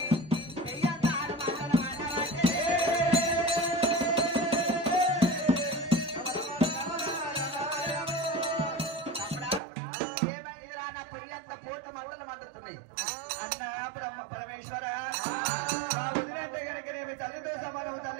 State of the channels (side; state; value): left; drops out; at 9.6 s